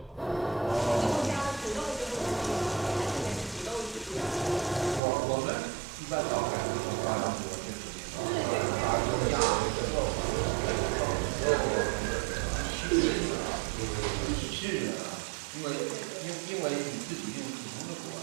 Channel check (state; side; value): drops out; left; at 5.0 s